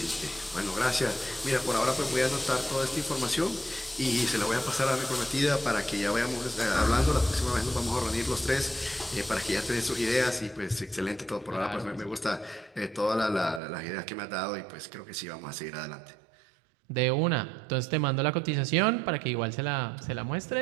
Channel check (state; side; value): drops out; left; at 13.6 s